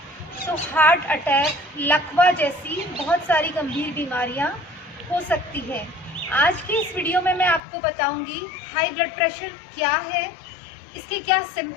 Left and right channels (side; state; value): right; drops out; at 7.6 s